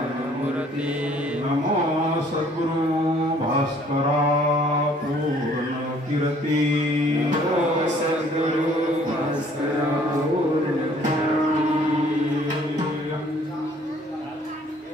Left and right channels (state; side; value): normal; both; correlation 0.58